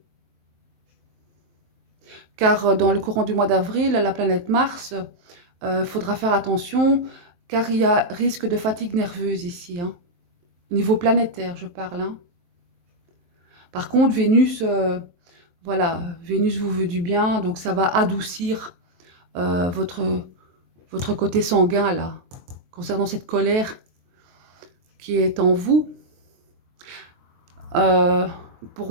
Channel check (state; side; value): late; left; 23 ms